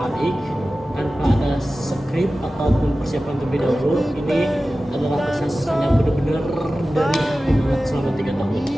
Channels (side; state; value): both; normal; correlation 0.95